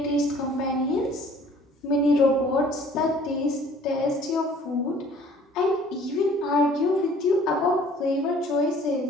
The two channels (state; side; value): normal; both; correlation 0.54